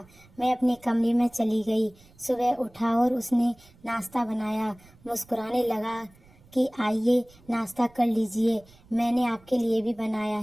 मैं अपने कमरे में चली गई। सुबह उठा और उसने नाश्ता बनाया। मुस्कुराने लगा कि आइए नाश्ता कर लीजिए, मैंने आपके लिए भी बनाया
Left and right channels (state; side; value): noise; right; rumble, 27 dB below the sound